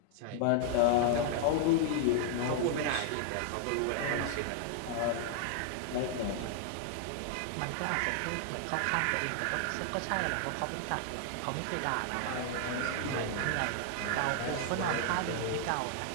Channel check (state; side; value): different; both; correlation 0.00